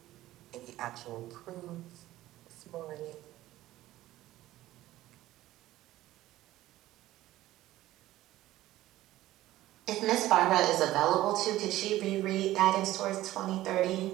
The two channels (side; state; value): left; quieter; 15.4 dB